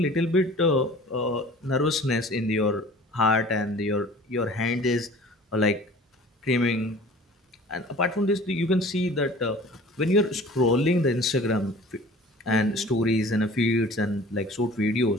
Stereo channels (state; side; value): normal; both; correlation 0.46